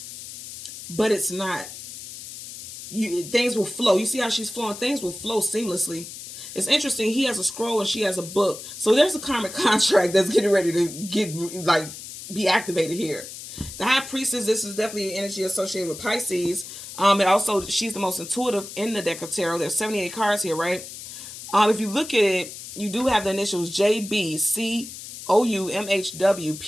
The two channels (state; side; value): noise; left; hiss, 12 dB below the sound